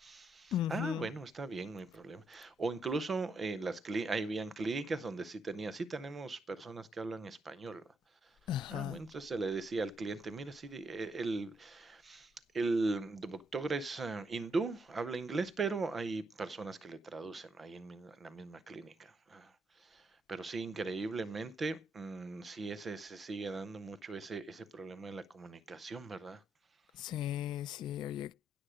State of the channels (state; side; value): normal; both; correlation 0.77